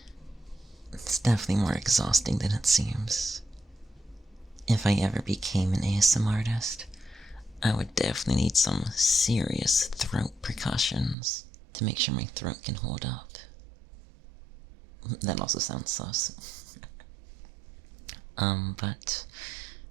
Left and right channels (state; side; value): drops out; left; at 11.2 s